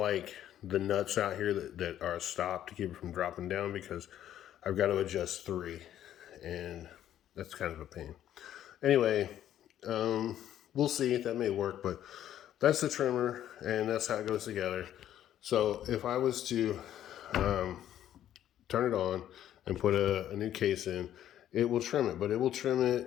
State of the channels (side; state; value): right; quieter; 11.4 dB